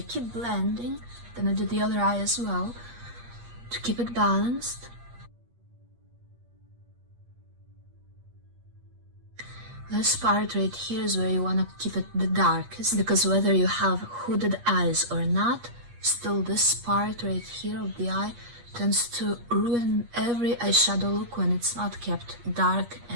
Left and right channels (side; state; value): left; late; 8.4 ms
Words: blending, then I do the other eye as well to keep it balanced. This part right here is where you want to keep it the darkest, because whether you have hooded eyes or not, still this part right here of the eye tends to ruin every eyeshadow look when it's not kept dark